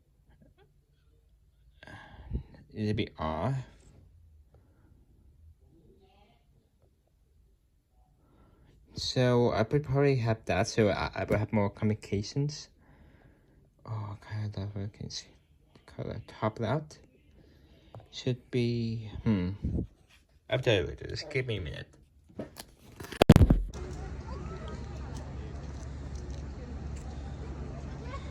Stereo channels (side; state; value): both; identical; correlation 1.00